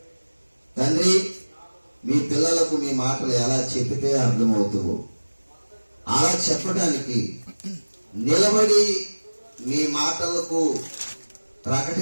తండ్రి, మీ పిల్లలకు మీ మాటలు ఎలా చెప్పితే అర్థమవుతావో అలా చెప్పడానికి నిలబడి మీ మాటలకు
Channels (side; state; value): both; inverted; correlation -1.00